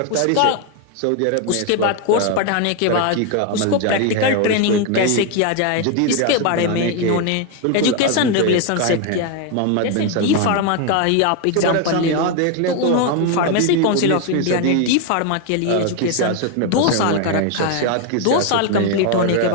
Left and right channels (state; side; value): different; both; correlation 0.01